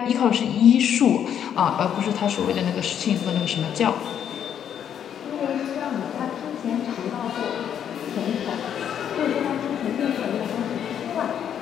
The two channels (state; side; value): quieter; right; 9.1 dB